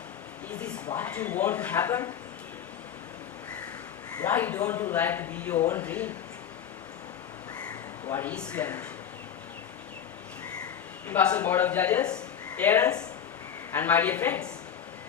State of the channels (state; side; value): quieter; right; 8.7 dB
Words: Is this what you want to happen? Why don't you like to be your own dream? What is your mission? Impartial board of judges, parents, and my dear friends,